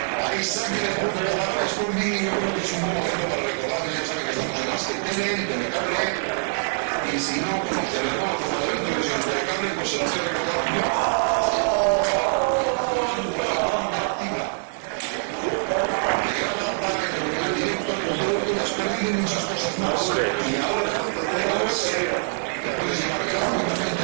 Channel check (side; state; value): left; silent; digital silence